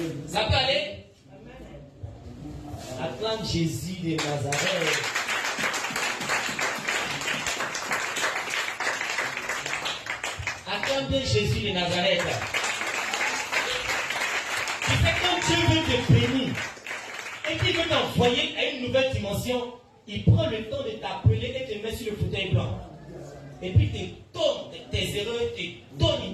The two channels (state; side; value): identical; both; correlation 1.00